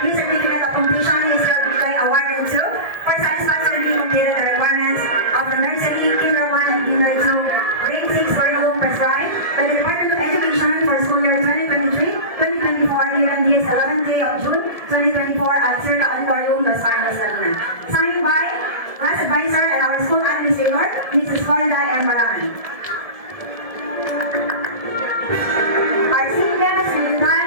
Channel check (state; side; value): late; left; 1.7 ms